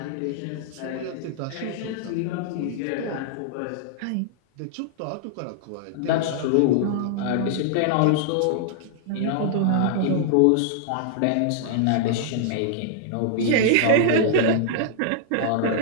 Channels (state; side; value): different; both; correlation -0.01